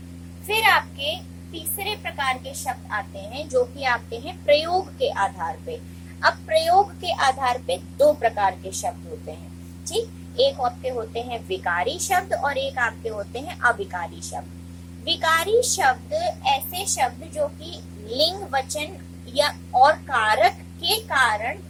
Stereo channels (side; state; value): both; identical; correlation 1.00